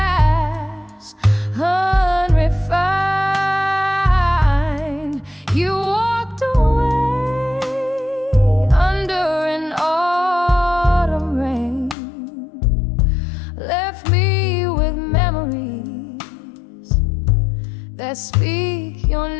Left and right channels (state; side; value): drops out; right; at 12.0 s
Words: unrefined. You walked away under an autumn rain. that speak your